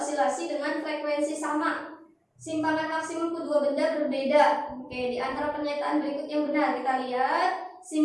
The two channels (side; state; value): both; identical; correlation 1.00